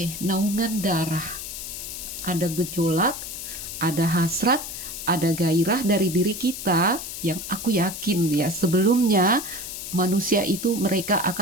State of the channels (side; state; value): left; noise; hiss, 8 dB below the sound